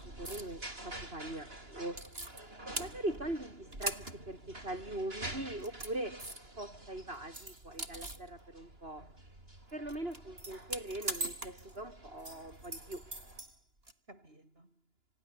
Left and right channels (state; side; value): late; left; 2.9 ms